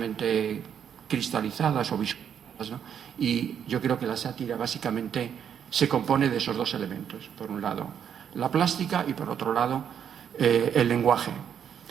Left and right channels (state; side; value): quieter; left; 8.4 dB